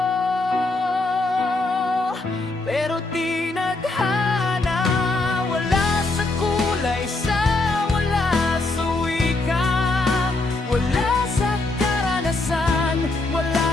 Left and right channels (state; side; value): quieter; right; 3.1 dB